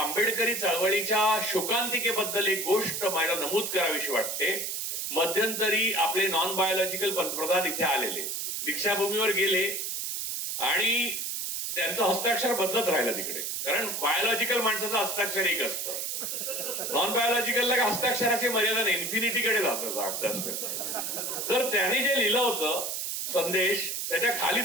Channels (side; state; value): right; noise; hiss, 3 dB below the sound